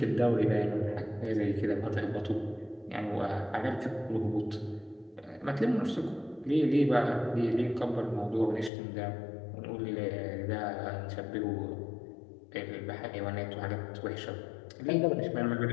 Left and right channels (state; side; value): drops out; right; at 8.7 s